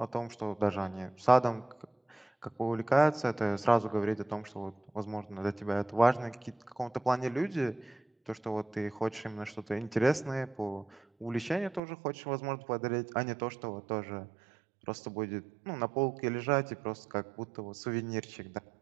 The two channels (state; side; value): drops out; left; at 11.8 s